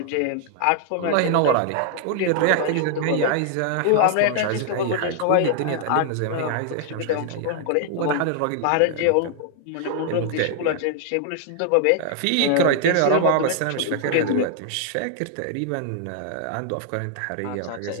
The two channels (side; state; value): both; different; correlation -0.01